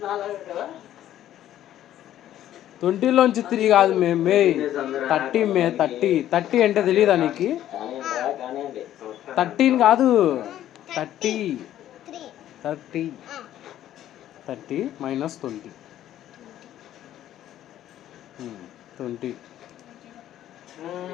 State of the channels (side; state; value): right; quieter; 12.2 dB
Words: 20లోంచి 3 కాదు మే 30 అంటే తెలియదా నీకు? 13 కాదు, 30 మైనస్ 20. 20.